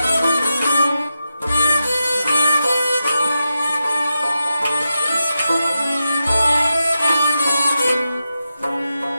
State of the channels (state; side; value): inverted; both; correlation -0.89